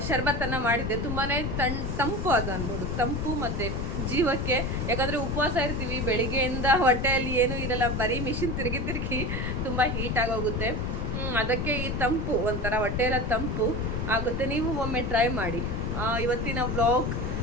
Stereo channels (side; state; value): left; noise; rumble, 1 dB below the sound